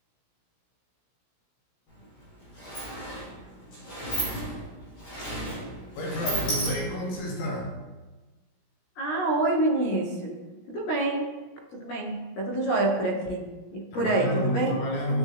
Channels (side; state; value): right; late; 17 ms